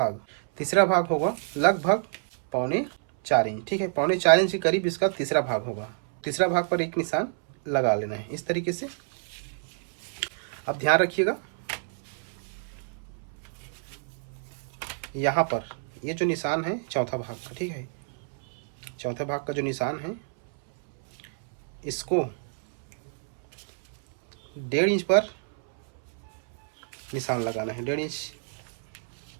भाग होगा लगभग 3.25 इंच, ठीक है। 3.25 इंच के करीब इसका तीसरा भाग होगा। तीसरा भाग पर एक निशान लगा लेना है इस तरीके से। अब ध्यान रखिएगा, यहाँ पर ये जो निशान है चौथा भाग का, ठीक है, चौथे भाग का जो निशान है इसको 1.5 इंच पर निशान लगाना है। 1.5 इंच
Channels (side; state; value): left; silent; 59 dB below the other